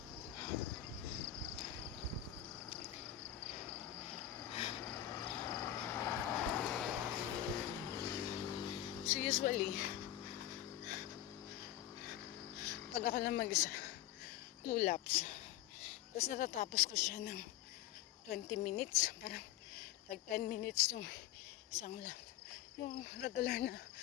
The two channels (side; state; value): right; quieter; 12.7 dB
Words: So usually, pag ako lang mag-isa, 2 laps. Tapos natatapos ko siya ng 20 minutes. Parang like 10 minutes yung isang lap. Yung regular na